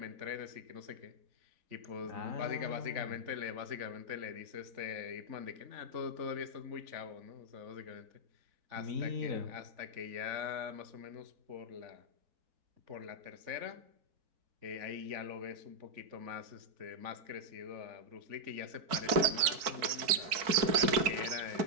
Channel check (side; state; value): left; late; 4.5 ms